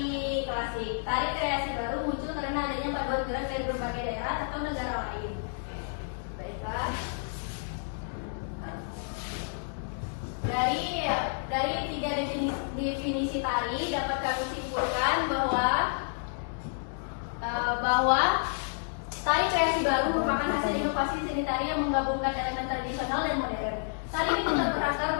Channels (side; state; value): right; silent; digital silence